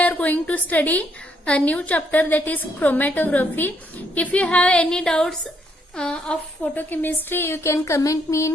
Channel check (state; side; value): normal; both; correlation 0.73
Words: going to study a new chapter, that is chromatography. If you have any doubts of photochemistry, you can comment me